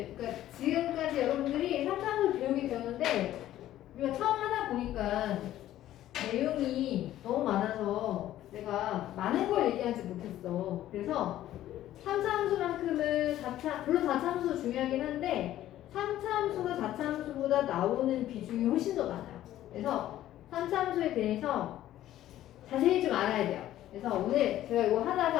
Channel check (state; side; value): quieter; right; 13.3 dB